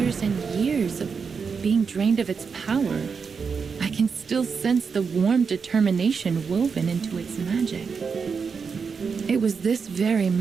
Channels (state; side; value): quieter; left; 5.7 dB